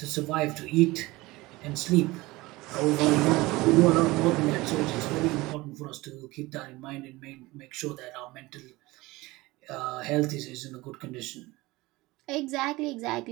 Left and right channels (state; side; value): quieter; left; 20.7 dB